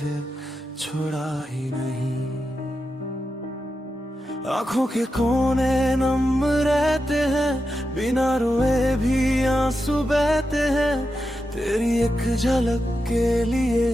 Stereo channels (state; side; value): normal; both; correlation 0.89